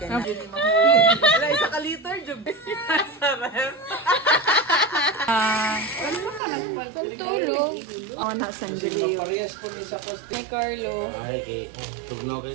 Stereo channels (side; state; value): left; drops out; at 6.4 s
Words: ka na. Yun yung mahuli. Wala, isa ka liter, Jub. Sarap. Tulog. Oh, na sandali. Parehas ko ni sa poste. Hey, Carlo. Ay, kay tugnaw